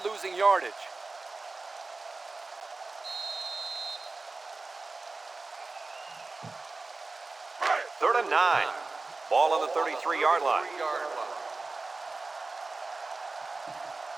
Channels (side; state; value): left; quieter; 3.6 dB